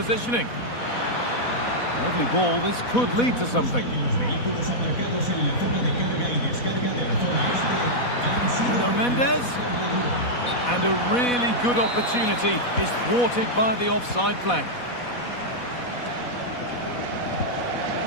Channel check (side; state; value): right; late; 4.1 ms